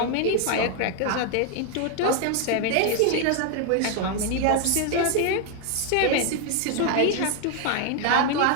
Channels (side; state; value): both; different; correlation 0.01